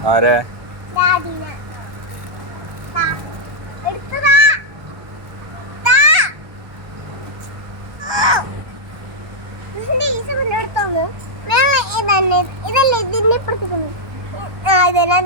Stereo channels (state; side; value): late; left; 1.2 ms